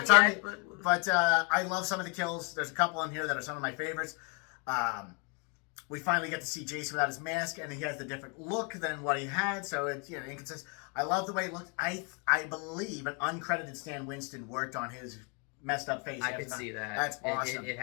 yet, but I love some of the kills. There's a couple in here that are some of my favorites. We finally get to see Jason without his mask, and he has the different look than what he had. So it's inconsistent. I love the way it looked. I believe an uncredited Stan Winston worked on his messed up face. I can see that. That's awesome. It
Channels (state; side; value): quieter; right; 34.6 dB